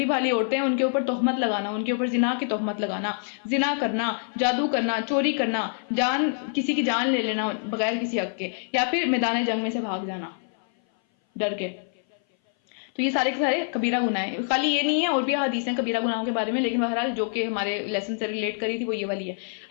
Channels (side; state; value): right; silent; 57 dB below the other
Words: بھالی عورتیں ہیں ان کے اوپر تہمت لگانا، ان کے اوپر زنا کی تہمت لگانا، زنا کرنا، جادو کرنا، چوری کرنا، کسی کی جان لے لینا بغیر کسی حق کے، یا پھر میدان جنگ میں سے بھاگ جانا ڈر کے. تو یہ سارے کے سارے کبیرہ گناہ ہیں. خالی یہ نہیں ہے، اور بھی حدیثیں کبیرہ گناہوں کے بارے میں، لیکن بہرحال جو کہ ہمارے لیسن سے ریلیٹ کری تھی وہ یہ والی ہے.